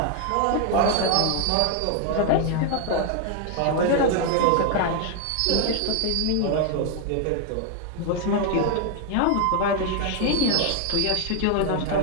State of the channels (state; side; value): different; both; correlation 0.00